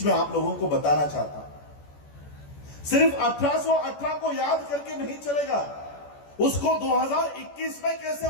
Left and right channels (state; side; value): late; right; 14 ms